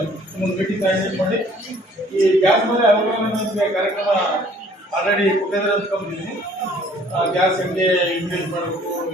ಒಂದು ಮೀಟಿಂಗ್ ಆರ್ಗನೈಸ್ ಮಾಡಿ ಈ ಗ್ಯಾಸ್ ಮೇಲೆ ಅವಗಾಹನೆ ಕಾರ್ಯಕ್ರಮ ಆಲ್ರೆಡಿ ಕೊಟ್ಟಿದ್ರೆ ಅಂದ್ಕೊಂಡಿದ್ದೀನಿ. ಗ್ಯಾಸ್ ಹೆಂಗೆ ಯೂಟಿಲೈಸ್ ಮಾಡಬೇಕು,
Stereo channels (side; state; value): both; normal; correlation 0.57